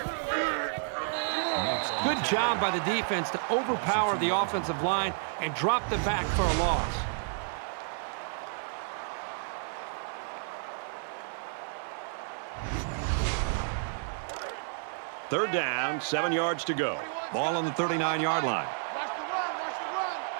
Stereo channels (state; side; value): silent; left; digital silence